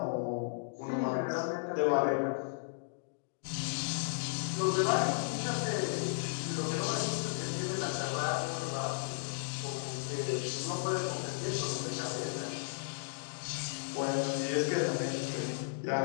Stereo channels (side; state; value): right; silent; digital silence